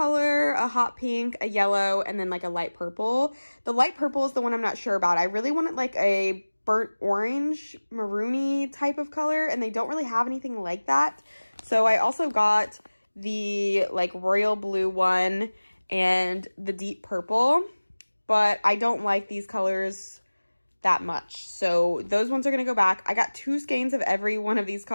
a hot pink, a yellow, and then like a light purple. The light purple is the one I'm not sure about. I really wanted like a burnt orange, maroony type of color, and they don't really have anything like that. So I also got the like royal blue one and the deep purple, but I don't like these colors that much. So those ones are going to go back. I got 2 skeins of every one of these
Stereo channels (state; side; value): inverted; both; correlation -1.00